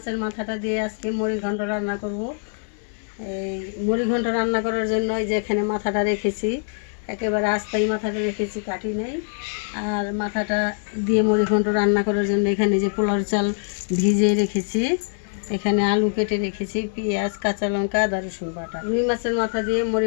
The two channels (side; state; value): right; silent; 63 dB below the other